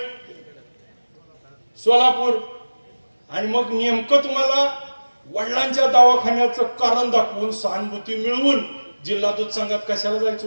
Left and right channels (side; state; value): both; inverted; correlation -1.00